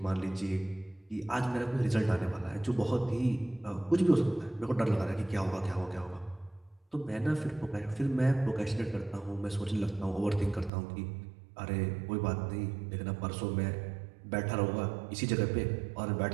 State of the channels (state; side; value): drops out; left; at 10.7 s